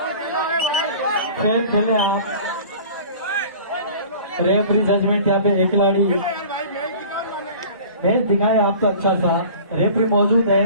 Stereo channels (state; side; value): inverted; both; correlation -0.44